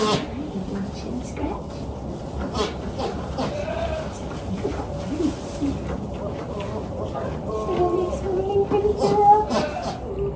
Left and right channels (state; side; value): identical; both; correlation 1.00